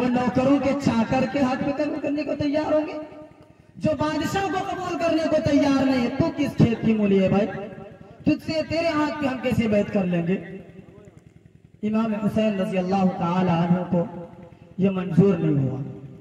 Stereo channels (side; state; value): both; identical; correlation 1.00